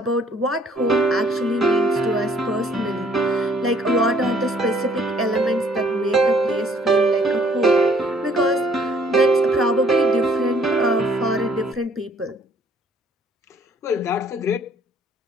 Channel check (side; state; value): both; normal; correlation 0.61